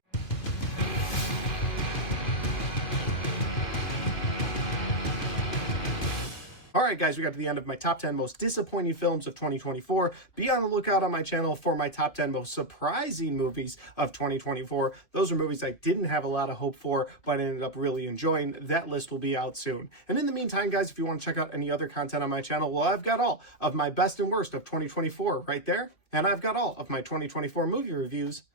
All right, guys, we got to the end of my top 10 most disappointing films of 2024. Be on the lookout on my channel for my top 10 most surprising movies of 2024. Those are movies I didn't have a lot of hope for, but ended up really enjoying. That list will be out soon. And in the meantime, guys, if you want to check out any other content on my channel, well, I've got all of my best and worst of 2024 right there. And I've got all of my 2024 movie reviews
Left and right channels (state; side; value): late; right; 2.5 ms